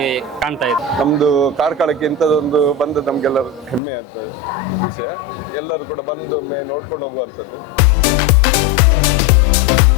ಕಾಣ್ತಾ ಇದೆ. ನಮ್ಮದು ಕಾರ್ಕಳಕ್ಕೆ ಇಂಥದ್ದೊಂದು ಬಂದು ನಮಗೆಲ್ಲರೂ ಹೆಮ್ಮೆ ಅಂತ ವಿಷಯ. ಎಲ್ಲರೂ ಕೂಡ ಬಂದು ಒಮ್ಮೆ ನೋಡ್ಕೊಂಡು ಹೋಗುವಂಥದ್ದು.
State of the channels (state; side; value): drops out; right; at 3.8 s